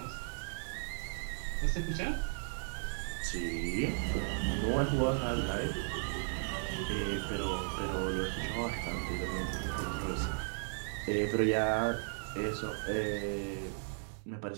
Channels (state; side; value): silent; left; digital silence